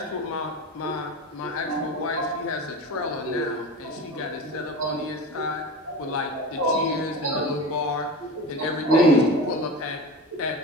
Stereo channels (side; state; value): both; normal; correlation 0.29